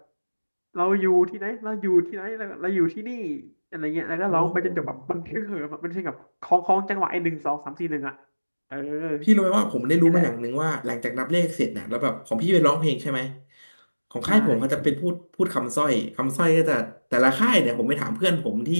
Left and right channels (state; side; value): inverted; both; correlation -1.00